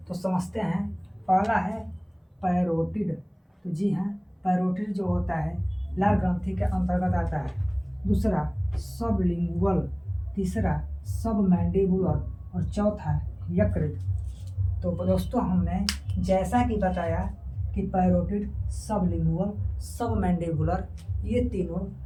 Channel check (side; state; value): both; identical; correlation 1.00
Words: तो समझते हैं। पहला है पैरोटिड। तो जी हाँ, पैरोटिड जो होता है लार ग्रंथि के अंतर्गत आता है। दूसरा सबलिंगुअल, तीसरा सब मैंडिबुलर और चौथा यकृत। तो दोस्तों हमने जैसा कि बताया कि पैरोटिड, सबलिंगुअल, सब मैंडिबुलर ये तीनों